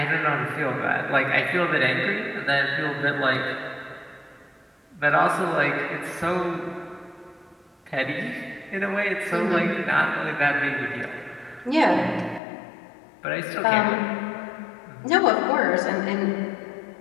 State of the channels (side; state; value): right; drops out; at 12.4 s